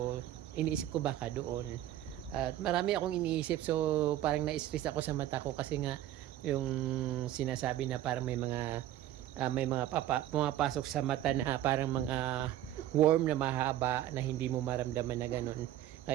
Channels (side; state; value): left; quieter; 12.9 dB